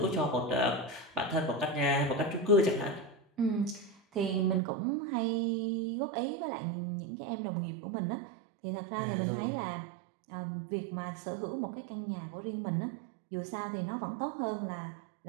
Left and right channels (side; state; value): left; drops out; at 4.6 s